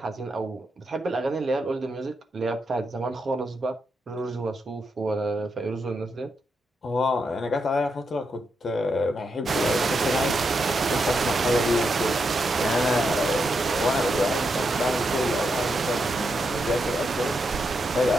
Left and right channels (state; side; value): normal; both; correlation 0.83